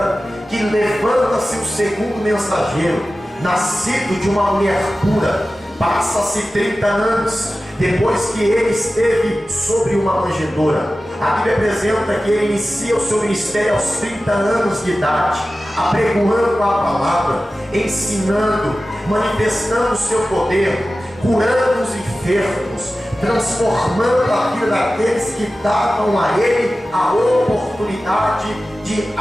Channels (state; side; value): normal; both; correlation 0.95